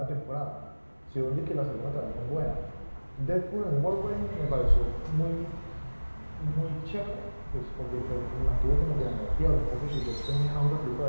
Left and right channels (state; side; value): inverted; both; correlation -1.00